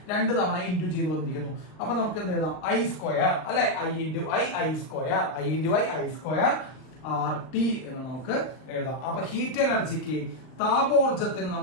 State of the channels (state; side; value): late; right; 39 ms